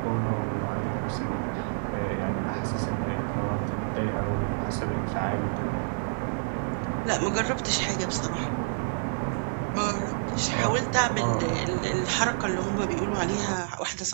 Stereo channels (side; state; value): left; silent; digital silence